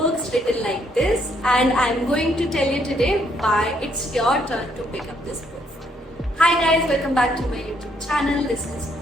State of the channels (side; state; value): both; normal; correlation 0.71